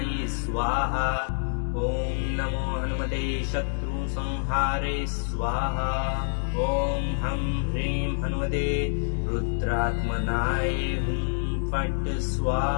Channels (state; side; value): silent; right; digital silence